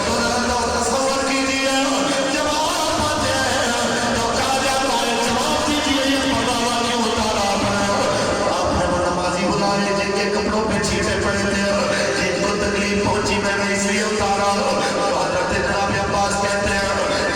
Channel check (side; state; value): both; identical; correlation 1.00